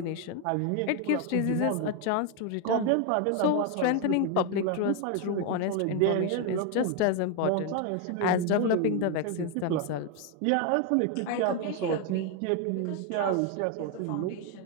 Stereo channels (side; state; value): both; different; correlation 0.01